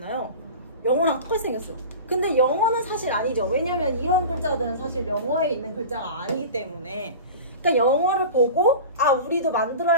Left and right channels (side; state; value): both; inverted; correlation -0.34